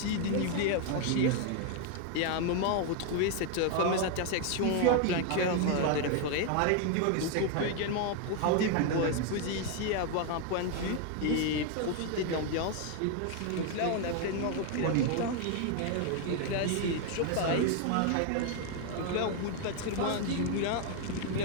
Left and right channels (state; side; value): different; both; correlation 0.01